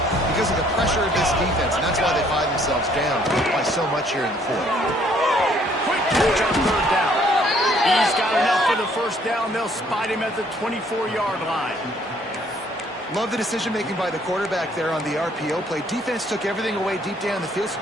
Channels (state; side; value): normal; both; correlation 0.63